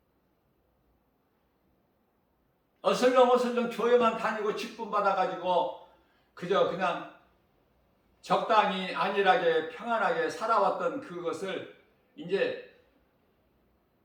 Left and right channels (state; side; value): identical; both; correlation 1.00